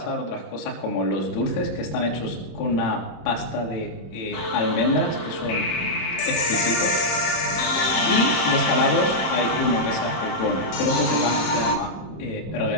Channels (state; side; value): late; right; 26 ms